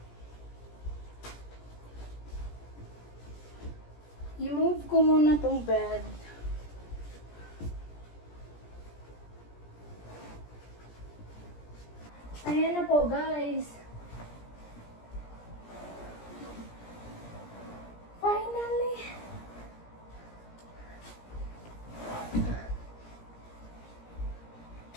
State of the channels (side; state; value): right; late; 17 ms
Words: I-move ko muna tong bed. Ayan na po guys. Finally!